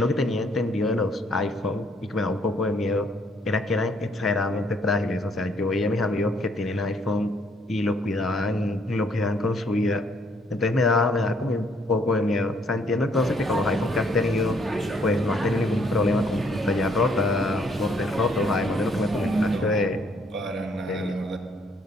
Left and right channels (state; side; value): normal; both; correlation 0.67